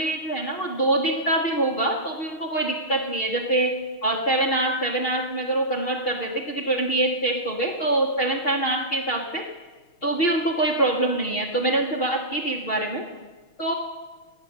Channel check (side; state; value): right; late; 6.4 ms